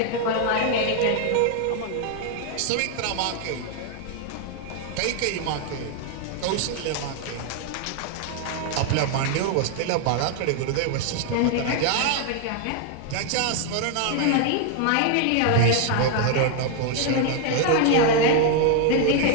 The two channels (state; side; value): different; both; correlation 0.00